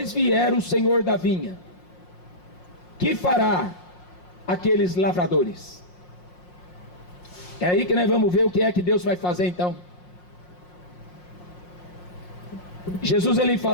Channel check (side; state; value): right; late; 5.6 ms